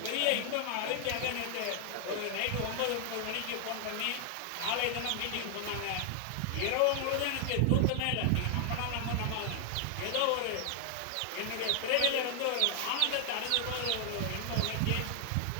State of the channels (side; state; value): both; different; correlation 0.00